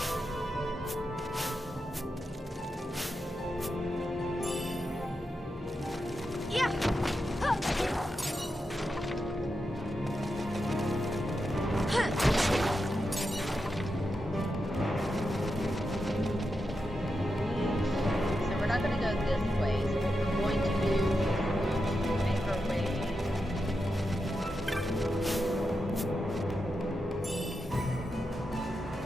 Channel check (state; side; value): normal; both; correlation 0.88